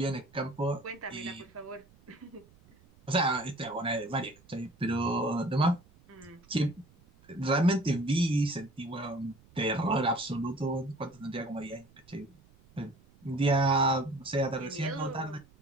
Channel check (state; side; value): noise; right; rumble, 28 dB below the sound